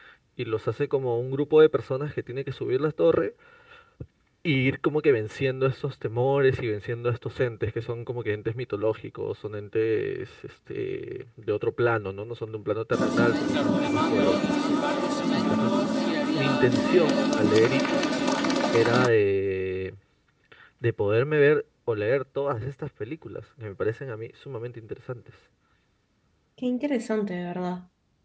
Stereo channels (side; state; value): both; identical; correlation 1.00